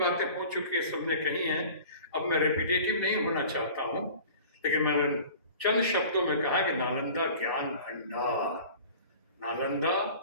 हो चुकी है, सबने कही हैं। अब मैं रिपीटेटिव नहीं होना चाहता हूं, लेकिन मैंने चंद शब्दों में कहा कि नालंदा ज्ञान भंडार, नालंदा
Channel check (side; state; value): both; inverted; correlation -0.43